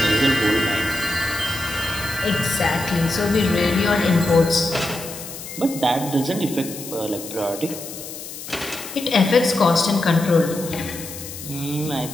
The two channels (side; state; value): left; noise; hiss, 11 dB below the sound